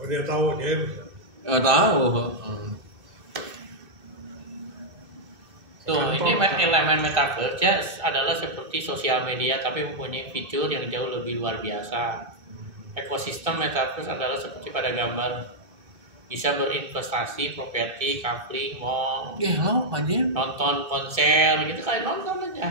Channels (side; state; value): left; late; 2.6 ms